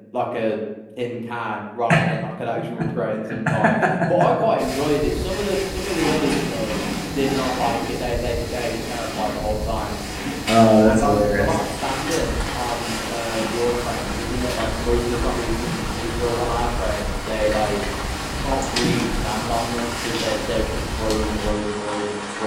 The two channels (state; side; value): identical; both; correlation 1.00